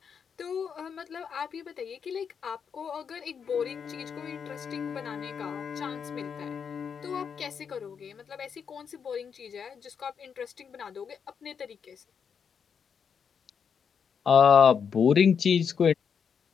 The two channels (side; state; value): right; quieter; 6.8 dB